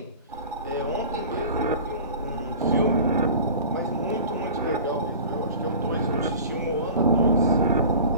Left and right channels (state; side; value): inverted; both; correlation -0.39